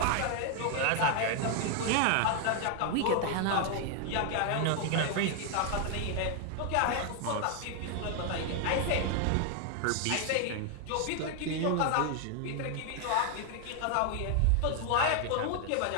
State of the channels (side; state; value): both; different; correlation 0.00